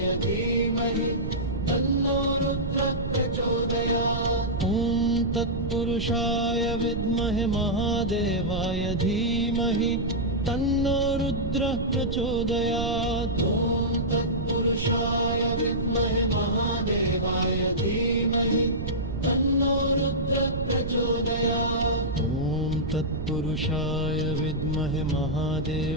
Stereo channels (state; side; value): noise; right; rumble, 4 dB below the sound